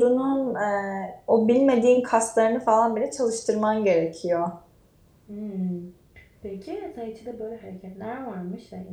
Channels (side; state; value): both; identical; correlation 1.00